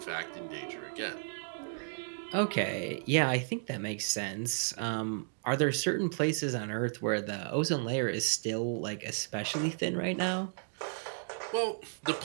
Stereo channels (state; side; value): silent; left; digital silence